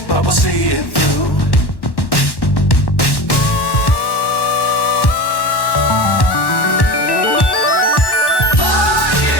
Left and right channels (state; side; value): late; right; 1.1 ms